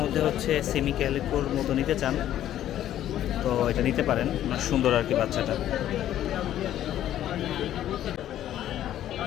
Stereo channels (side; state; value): right; quieter; 12.0 dB